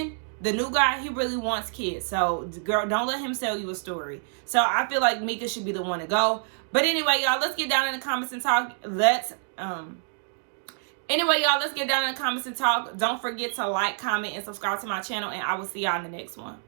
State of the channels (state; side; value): silent; left; digital silence